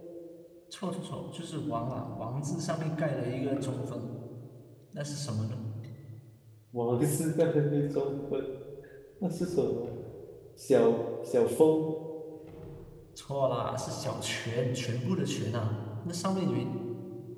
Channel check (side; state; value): both; identical; correlation 1.00